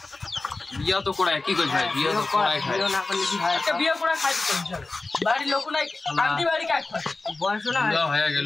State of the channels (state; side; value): quieter; right; 3.4 dB